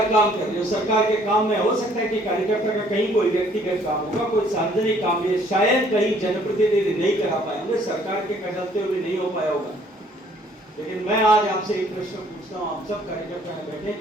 काम कर रही है, सरकार के काम में हो सकता है कि कार्यकर्ता का कहीं कोई व्यक्तिगत काम होगा, कोई सार्वजनिक काम है, शायद कहीं जनप्रतिनिधि नहीं करा पाए होंगे, सरकार के चलते हुए नहीं हो पाया होगा। लेकिन मैं आज आपसे एक प्रश्न पूछता हूं, आप सब कार्यकर्ता में बैठे,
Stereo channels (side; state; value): both; normal; correlation 0.61